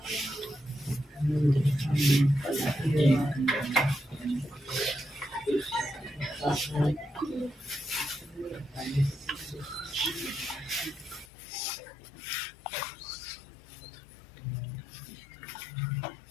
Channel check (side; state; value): right; drops out; at 11.2 s